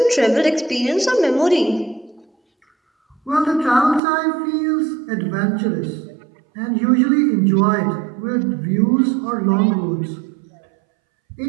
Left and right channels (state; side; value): drops out; left; at 4.0 s